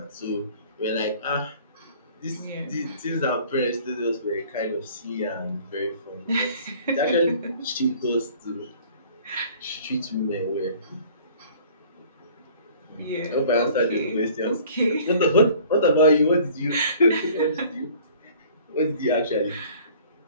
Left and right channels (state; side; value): inverted; both; correlation -0.51